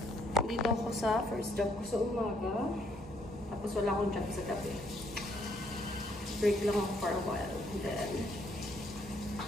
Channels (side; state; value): both; normal; correlation 0.71